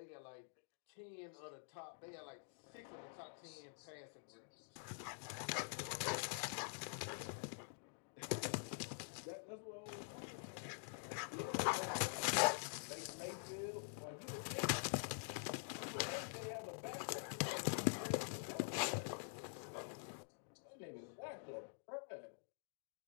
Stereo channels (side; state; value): right; silent; digital silence